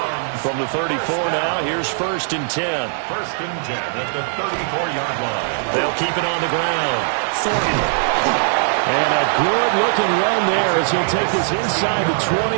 From the 34 now, here's 1st and 10. 1st and 10 at the 34-yard line. They'll keep it on the ground. Thornton. And a good-looking run there as he'll take this inside the 20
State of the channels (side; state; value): left; silent; 66 dB below the other